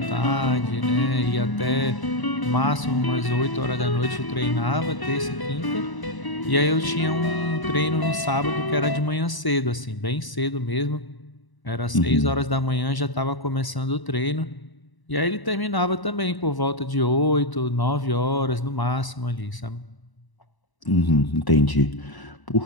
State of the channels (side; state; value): right; late; 1.0 ms